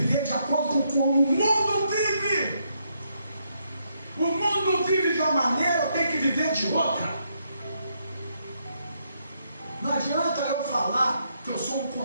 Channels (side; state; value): both; inverted; correlation -0.77